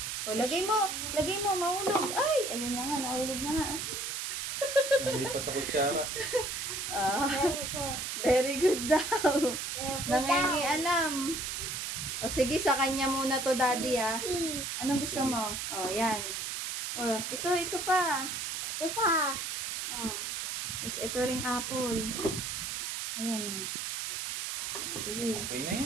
O, lagay mo, mahulog. Ay, ayun na nga, nahulog na nga. Hindi pa sa kutsara. Very good daw. Nangingialam. O sige, sa kanya muna to, daddy, ah. Anong gusto mo? O, yan. O, ito pa. Tapos ito ring apple. Ayan. Sige. Okay na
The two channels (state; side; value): noise; right; hiss, 3 dB below the sound